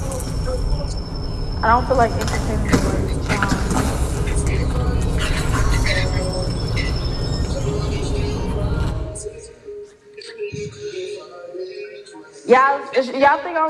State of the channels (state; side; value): identical; both; correlation 1.00